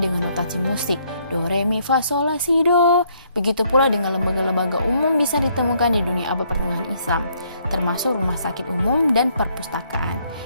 notasi musik, do, re, mi, fa, sol, la, si, do. Begitu pula dengan lembaga-lembaga umum bisa ditemukan di dunia abad pertengahan Islam, termasuk rumah sakit umum dan perpustakaan.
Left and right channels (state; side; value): inverted; both; correlation -0.69